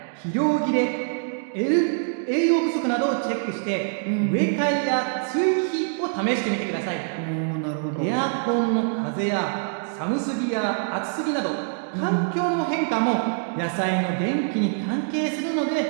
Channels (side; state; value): left; silent; 62 dB below the other